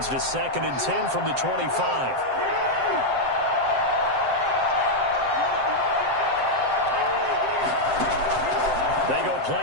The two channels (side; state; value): left; late; 7.7 ms